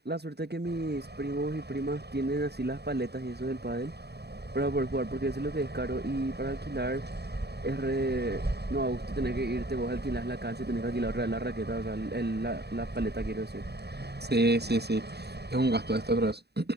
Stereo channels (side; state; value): left; late; 0.48 ms